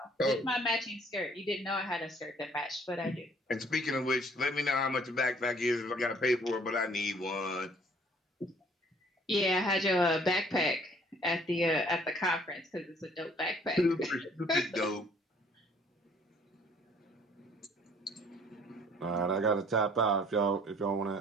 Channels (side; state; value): both; normal; correlation 0.58